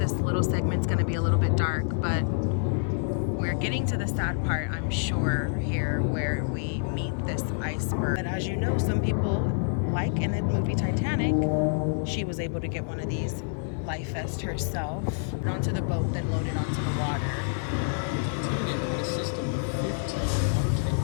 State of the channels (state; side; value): silent; right; 57 dB below the other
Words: little segment is going to be a little bit dark, but we're getting to the sad part, I'm sure, here where we meet this iceberg. But as you know, some people, like in the movie Titanic, she was able to get one of these life vest herself. Onto the boat, then loaded onto the water. Titanic had a system of 15 watertight